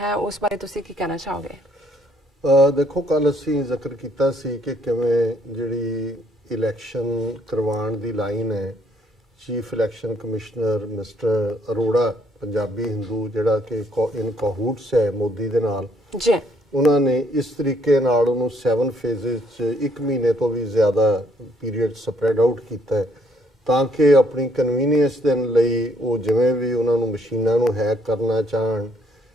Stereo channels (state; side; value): normal; both; correlation 0.68